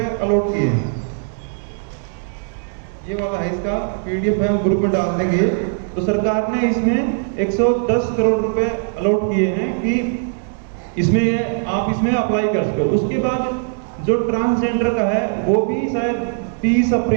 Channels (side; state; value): left; silent; 64 dB below the other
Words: अलॉट किए हैं। ये वाला है, इसका PDF है, हम ग्रुप में डाल देंगे। तो सरकार ने इसमें 110 करोड़ रुपए अलॉट किए हैं कि इसमें आप इसमें अप्लाई कर सको। उसके बाद जो ट्रांसजेंडर का है वो भी शायद 30